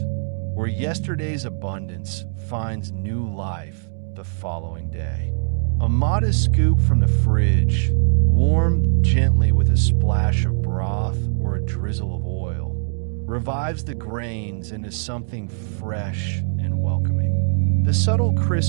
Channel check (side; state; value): left; silent; digital silence